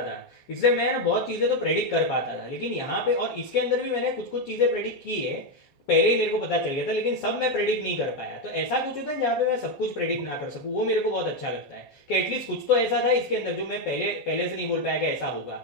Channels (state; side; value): late; right; 7.3 ms